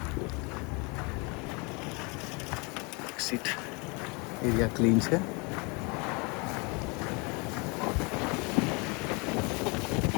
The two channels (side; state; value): right; quieter; 30.1 dB